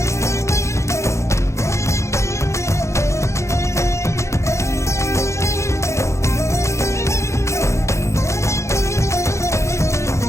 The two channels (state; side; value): late; right; 0.14 ms